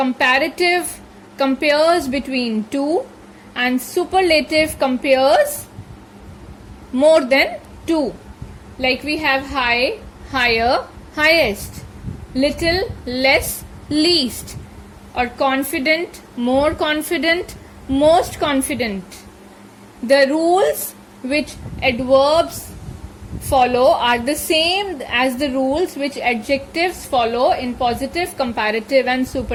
compares between two, and superlative compares more than two. Like we have high, higher, highest, little, less, least, or confident, more confident, most confident. The rules which adverbs follow are the same as the rules which adjectives follow in positive, comparative and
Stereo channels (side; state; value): both; identical; correlation 1.00